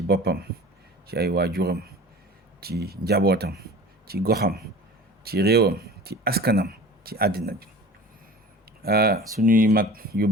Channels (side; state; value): both; normal; correlation 0.40